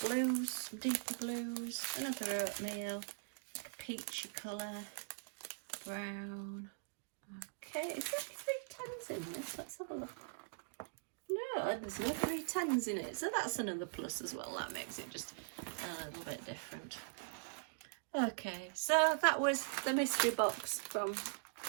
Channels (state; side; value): silent; left; digital silence